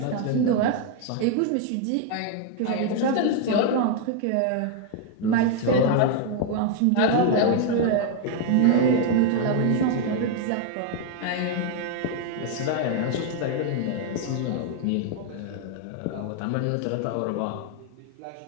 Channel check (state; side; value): different; both; correlation 0.00